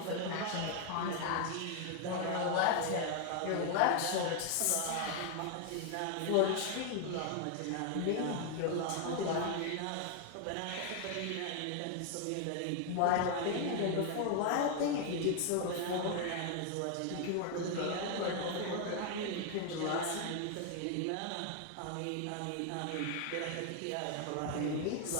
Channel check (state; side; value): different; both; correlation 0.01